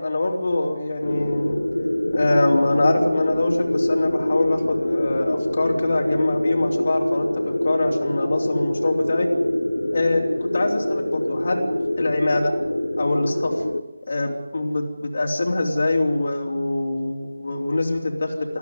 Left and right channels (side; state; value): both; inverted; correlation -0.97